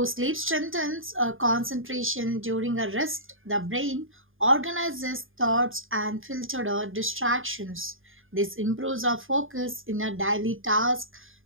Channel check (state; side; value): late; left; 0.59 ms